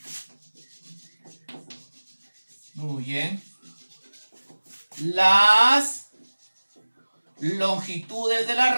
las longitudes de la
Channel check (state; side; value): inverted; both; correlation -1.00